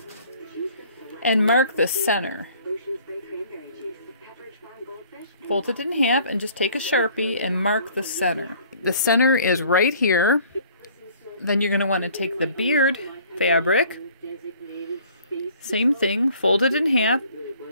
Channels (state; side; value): inverted; both; correlation -0.54